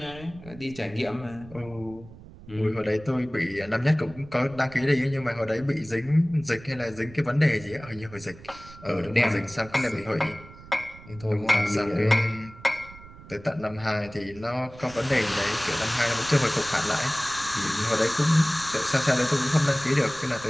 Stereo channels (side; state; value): right; noise; rumble, 19 dB below the sound